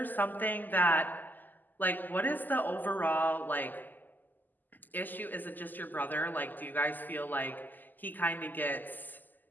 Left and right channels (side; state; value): right; late; 0.086 ms